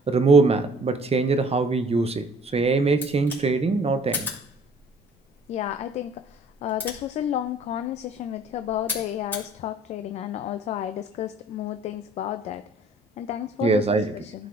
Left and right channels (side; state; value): both; normal; correlation 0.54